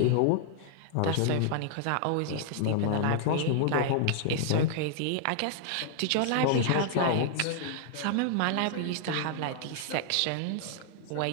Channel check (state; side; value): different; both; correlation 0.00